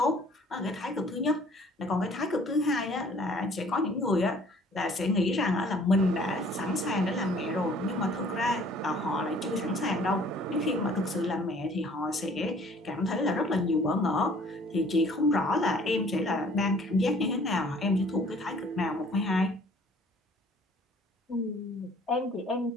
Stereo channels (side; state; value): both; normal; correlation 0.55